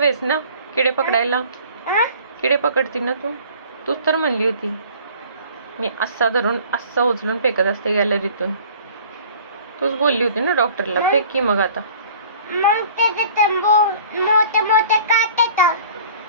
आहेस ना किडे पकडायला? किडे पकडती ना तूच तर म्हणली होती मी असा धरून असा उचलून फेकत असते गॅलरीतून. तूच बोलली होती ना डॉक्टरला. फेक की मग आता. मग मोठे मोठे काटे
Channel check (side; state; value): both; inverted; correlation -0.49